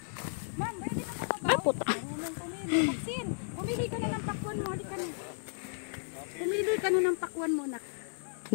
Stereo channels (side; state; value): right; silent; digital silence